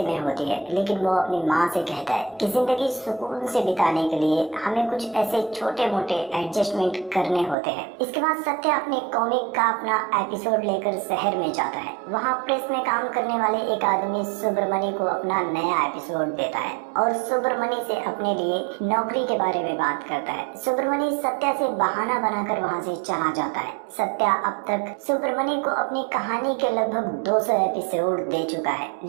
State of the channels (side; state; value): left; drops out; at 7.6 s